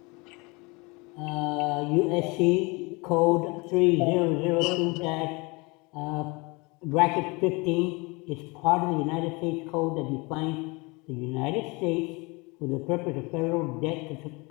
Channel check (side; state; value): right; quieter; 27.0 dB